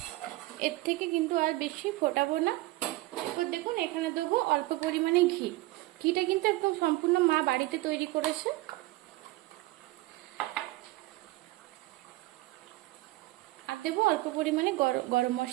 এর থেকে কিন্তু আর বেশি ফোটাবো না। এরপর দেখুন এখানে দেবো অল্প পরিমাণে ঘি। ঘিটা কিন্তু একদম সম্পূর্ণ মা বাড়িতে তৈরি করেছে। আর দেবো অল্প পরিমাণে গরম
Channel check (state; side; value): quieter; left; 19.3 dB